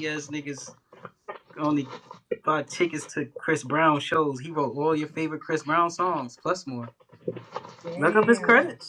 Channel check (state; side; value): identical; both; correlation 1.00